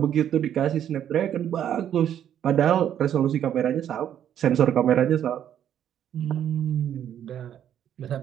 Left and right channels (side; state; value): left; quieter; 10.1 dB